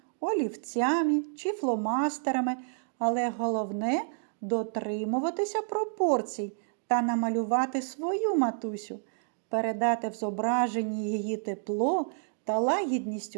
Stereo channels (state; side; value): silent; left; digital silence